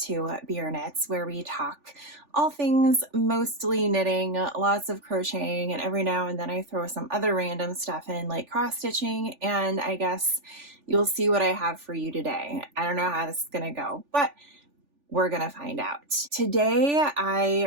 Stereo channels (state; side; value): late; left; 3.4 ms